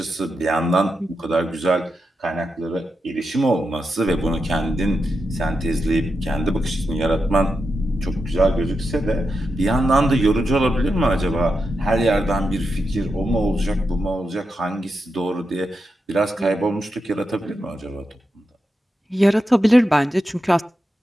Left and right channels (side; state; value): both; normal; correlation 0.88